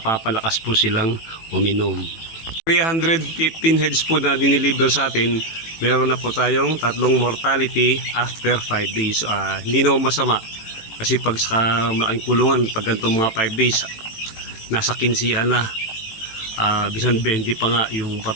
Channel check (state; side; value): late; right; 18 ms